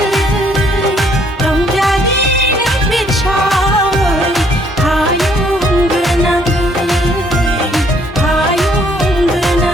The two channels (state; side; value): normal; both; correlation 0.66